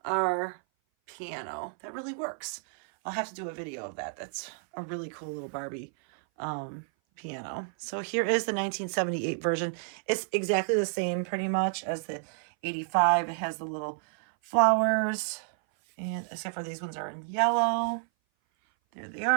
our piano. That really works. I'll have to do a video of that. That's a really cool little Barbie piano. So here is the 1978 version. It's exactly the same pretty much as the 85. It has the little flowers, and except for these ones are in yellow. There they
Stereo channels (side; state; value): left; silent; 56 dB below the other